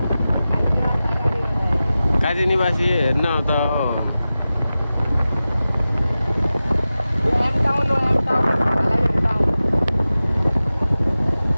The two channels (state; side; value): inverted; both; correlation -0.95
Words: काजी निवासी हेर्न त